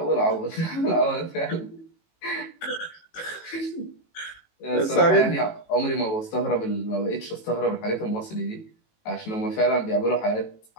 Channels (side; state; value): right; late; 18 ms